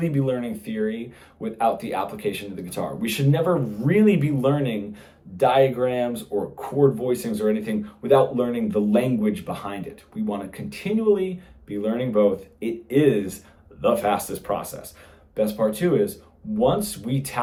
be learning theory without the application of the guitar. We should never really be learning diagrams or chord voicings or anything without learning the language behind it. We want to continually be learning both. It is the fastest process. Best part too is once we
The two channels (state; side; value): identical; both; correlation 1.00